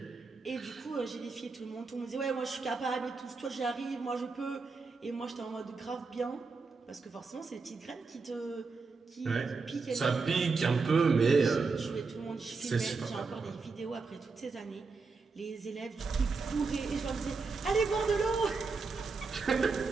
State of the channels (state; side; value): quieter; left; 4.4 dB